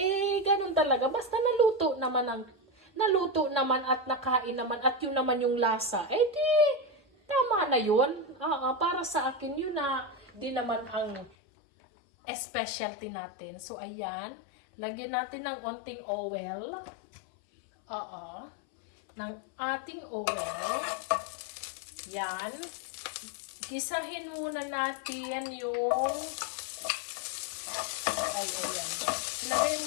Ganun talaga. Basta naluto naman at nakain naman at yun naman yung lasa. Tama na yun. Para sa akin, yun na di naman ang specialty natin. So, ayan. Lagyan natin ng onting oil. Ng ating oil. Yan. Gisahin muna natin yung ayan. Ilagay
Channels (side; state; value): right; drops out; at 11.3 s